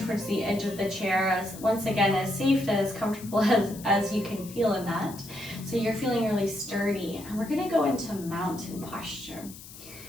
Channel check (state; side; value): noise; left; hiss, 16 dB below the sound